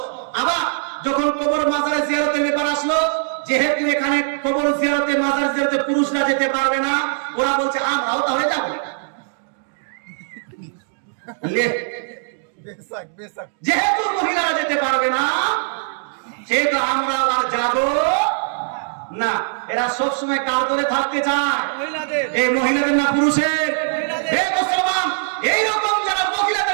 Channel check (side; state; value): left; silent; digital silence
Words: আবার যখন কবর মাজারে জিয়ারতের ব্যাপার আসলো, যেহেতু এখানে কবর জিয়ারতে মাজার জিয়ারতে পুরুষরা যেতে পারবে না, ওরা বলছে আমরাও তাহলে যাবো। যেহেতু মহিলারা যেতে পারবে না, সেহেতু আমরা আর যাব না। এরা সবসময় কার দলে থাকতে চায়? এই মহিলাদের না পুরুষের? মুসলমান, এইরকম যারা